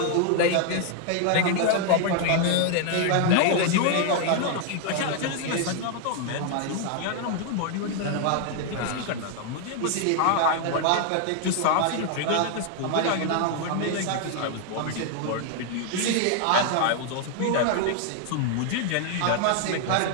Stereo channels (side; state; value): both; different; correlation 0.00